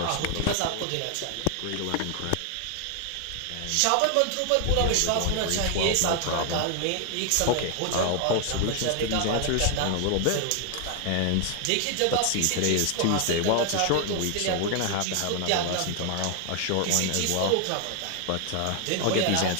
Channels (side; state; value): both; different; correlation 0.00